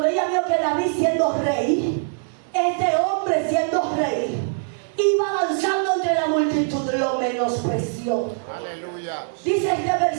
ella vio que David siendo rey, este hombre siendo rey, iba avanzando entre la multitud, lo menospreció. Aleluya. Dice este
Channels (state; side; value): silent; left; digital silence